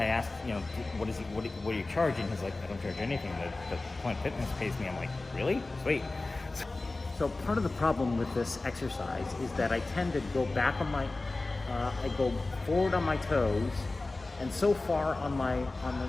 asked, you know, what are you charging? He's like, I don't charge anything. The Planet Fitness pays me. I'm like, really? Sweet. So part of the problem with this exercise is that I tend to go back on my, I go forward on my toes, and so far on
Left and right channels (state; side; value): quieter; right; 3.2 dB